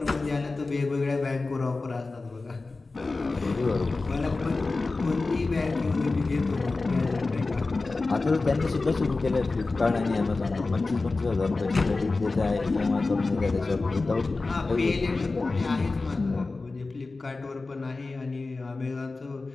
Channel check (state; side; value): quieter; right; 3.6 dB